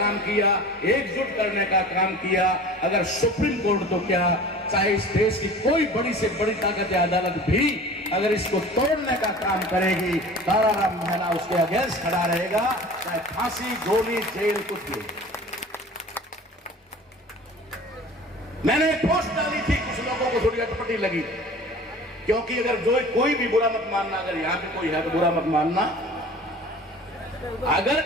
किया, एकजुट करने का काम किया। अगर सुप्रीम कोर्ट तो क्या, चाहे इस देश की कोई बड़ी से बड़ी ताकत या अदालत भी अगर इसको तोड़ने का काम करेगी, ताराराम महला उसके अगेंस्ट खड़ा रहेगा, चाहे फांसी, गोली, जेल, कुछ भी। मैंने एक पोस्ट डाली थी, कुछ लोगों को थोड़ी अटपटी लगी, क्योंकि अगर जो कोई भी बुरा मत मानना, अगर यहां पे कोई है तो बुरा मत मानना। अगर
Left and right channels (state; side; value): normal; both; correlation 0.41